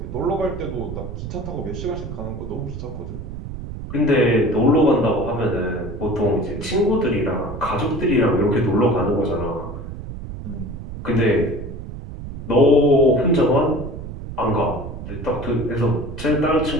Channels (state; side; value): noise; right; rumble, 9 dB below the sound